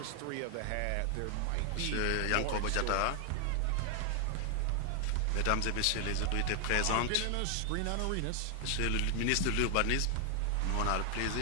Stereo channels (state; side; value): different; both; correlation 0.00